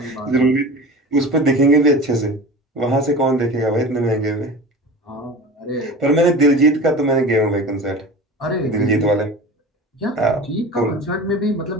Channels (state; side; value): normal; both; correlation 0.34